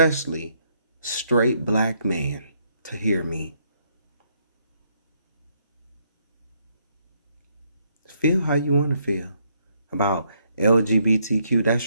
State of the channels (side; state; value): both; inverted; correlation -0.72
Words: straight black man, to hear me. Feel how you want to feel about LGBTQ.